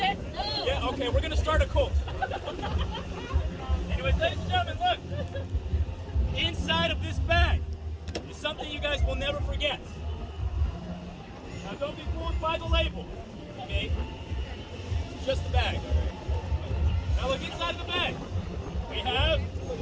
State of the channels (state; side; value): identical; both; correlation 1.00